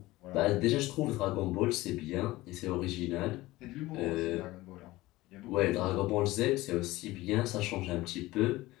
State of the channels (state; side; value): quieter; right; 18.6 dB